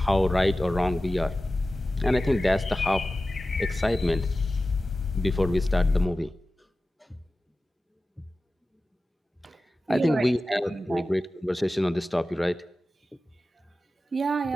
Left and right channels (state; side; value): normal; both; correlation 0.95